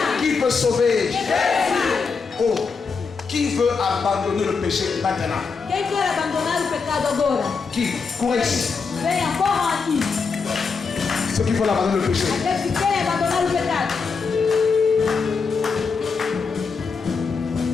Qui peut sauver? Oh, qui veut abandonner le péché maintenant? Qui? Courez ici. Ceux qui veulent abandonner le péché.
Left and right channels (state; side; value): quieter; right; 5.0 dB